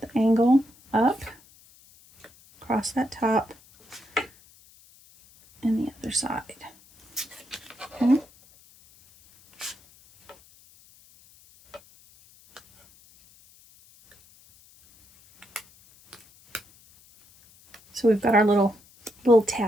the angle up, across that top, and the other side. Okay. So we've got our little little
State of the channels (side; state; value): left; noise; hiss, 28 dB below the sound